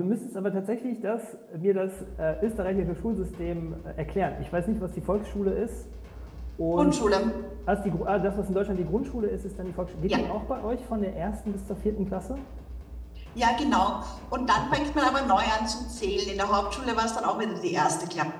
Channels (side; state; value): both; identical; correlation 1.00